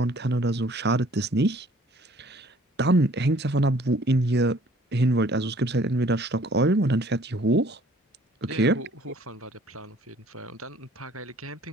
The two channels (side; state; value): both; normal; correlation 0.56